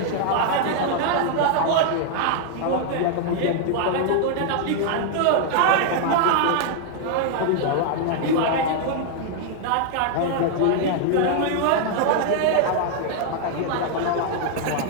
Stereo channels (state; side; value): different; both; correlation 0.00